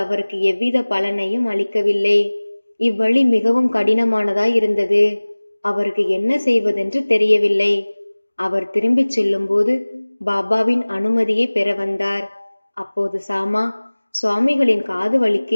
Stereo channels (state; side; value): inverted; both; correlation -1.00